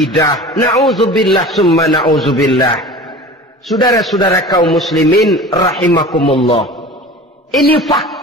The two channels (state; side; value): normal; both; correlation 0.38